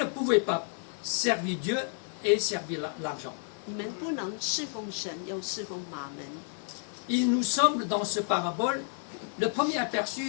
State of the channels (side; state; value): right; silent; 57 dB below the other